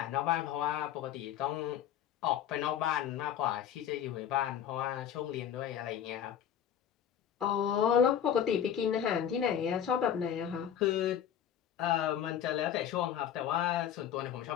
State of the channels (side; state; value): right; quieter; 9.5 dB